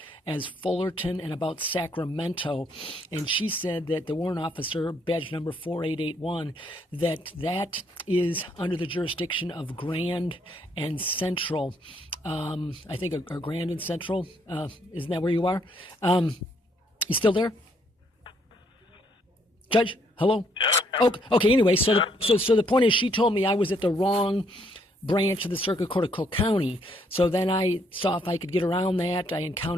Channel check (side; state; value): both; normal; correlation 0.70